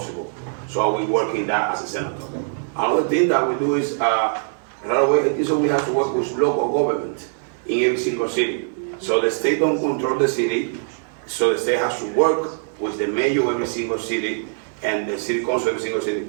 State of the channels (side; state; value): left; silent; 58 dB below the other